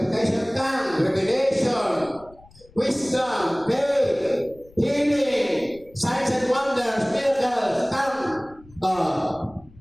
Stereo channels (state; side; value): noise; left; rumble, 26 dB below the sound